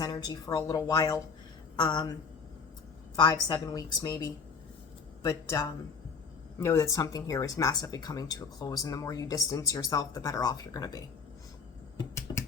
energy for a little while. 5-7 weeks maybe. But know that something here is massively coming to a close. And the more you distance yourself, the better off you're going to be.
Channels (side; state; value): right; quieter; 5.4 dB